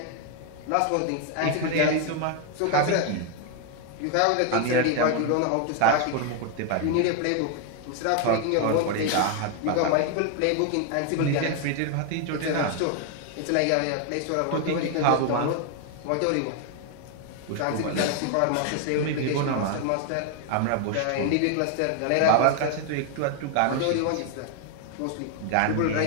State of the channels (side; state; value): both; different; correlation 0.01